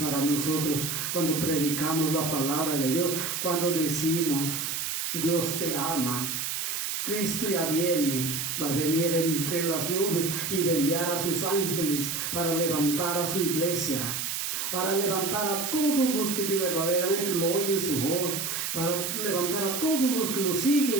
nosotros cuando predicamos la palabra de Dios, cuando decimos: Dios te ama, Cristo ya viene, va a venir entre las nubes y va a enviar a sus ángeles para levantar a su iglesia, para levantar a todos los que verdaderamente lo oyen su voz, para levantar a todos los que lo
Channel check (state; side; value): noise; right; hiss, 2 dB below the sound